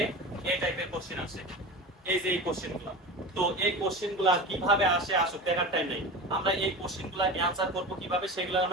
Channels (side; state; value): both; normal; correlation 0.30